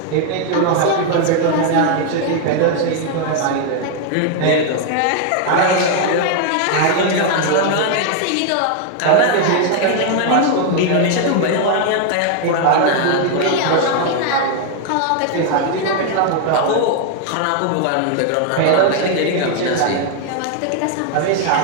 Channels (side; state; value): both; different; correlation 0.00